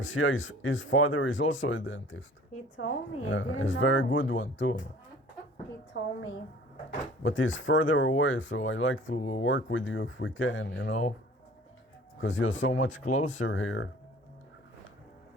his father is also a dentist. He told me. Yeah, he's a very good one too. He told me. But he's further away, so I like to work with you if we can, you know? Because you're so much closer here.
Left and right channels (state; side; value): normal; both; correlation 0.48